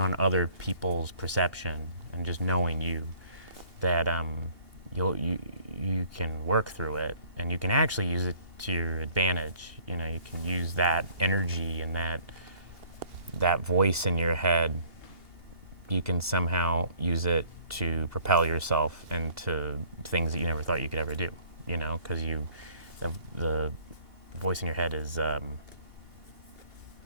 other people's perception, and just knowing that you can work through it, and you can actually use it to your advantage. You can use that energy and that voice in your head. You can somehow use it to propel yourself into things that you never thought you could ever do. Because the voice in your head is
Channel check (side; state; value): left; late; 2.8 ms